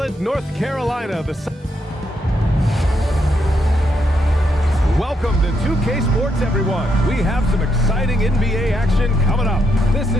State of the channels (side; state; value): both; normal; correlation 0.78